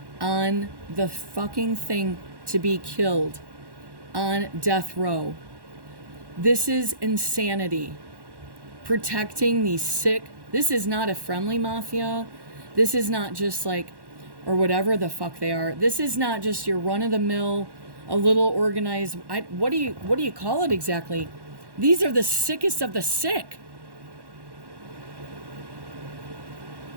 on the fucking thing to be killed, on death row. This is insanity. Protecting these sick. This is not a friendly mafia. This is not just like, or whatever the fuck they are. This is not just your run-of-the-mill, a little organized. What do you call it exactly? These are the sickest of the sick.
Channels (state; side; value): late; left; 1.1 ms